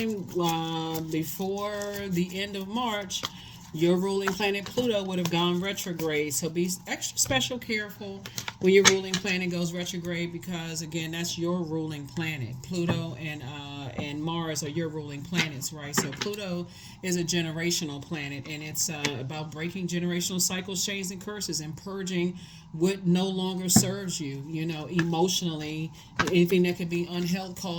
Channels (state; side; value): identical; both; correlation 1.00